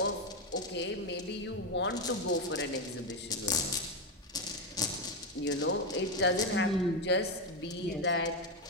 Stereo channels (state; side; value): normal; both; correlation 0.07